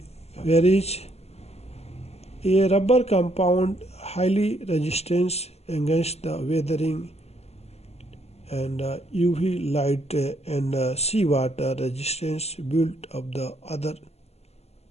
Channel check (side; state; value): right; late; 0.30 ms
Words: a rubber compound highly resistant against the weathering and UV light and seawater resistance built of the other